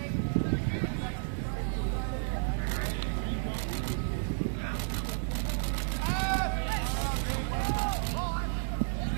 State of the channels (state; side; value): silent; left; digital silence